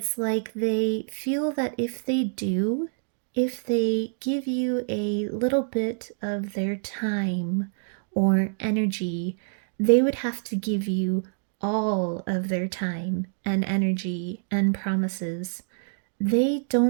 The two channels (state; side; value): silent; left; digital silence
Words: like they feel that if they give you a little bit of their time or energy, they would have to give you all of their time and energy and promises. They